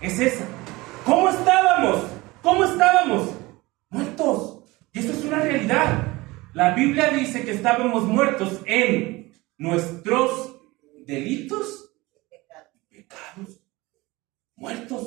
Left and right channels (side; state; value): left; quieter; 21.5 dB